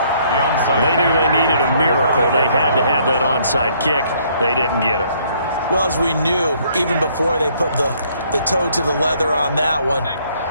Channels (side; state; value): both; inverted; correlation -0.65